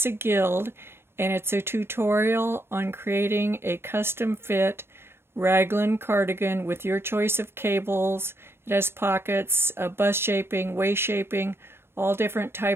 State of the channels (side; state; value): left; late; 0.12 ms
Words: a Guild, and it's a tutorial on creating a custom fit raglan cardigan with your choice of cables. It has pockets, bust shaping, waist shaping, all different